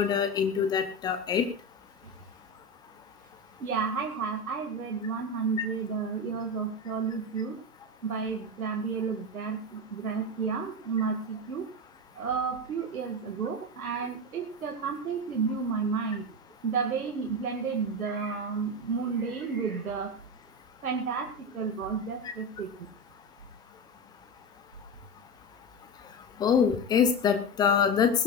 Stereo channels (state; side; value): normal; both; correlation 0.18